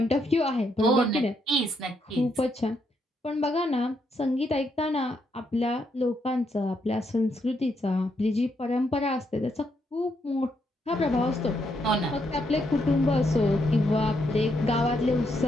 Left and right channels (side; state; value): both; normal; correlation 0.77